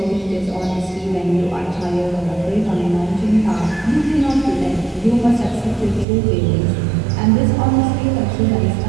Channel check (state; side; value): drops out; left; at 6.1 s